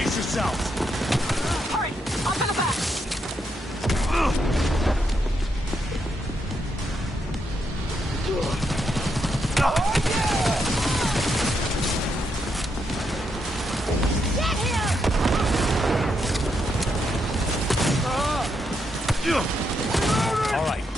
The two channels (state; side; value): normal; both; correlation 0.80